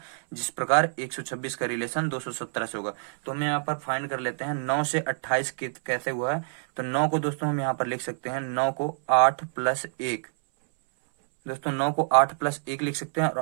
जिस प्रकार 126 का रिलेशन 217 से होगा। तो हम यहाँ पर फाइंड कर लेते हैं 9 से 28 कैसे हुआ है। तो 9 को दोस्तों हम यहाँ पर लिख सकते हैं, 9 को 8 प्लस 1, दोस्तों 9 को 8 प्लस 1 लिख सकते हैं।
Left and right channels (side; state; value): left; silent; 60 dB below the other